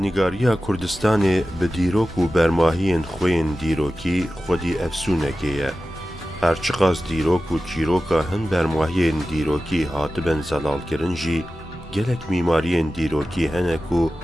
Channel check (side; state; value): both; normal; correlation 0.94